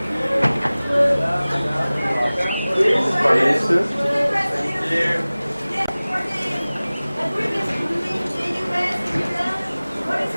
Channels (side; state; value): both; inverted; correlation -0.99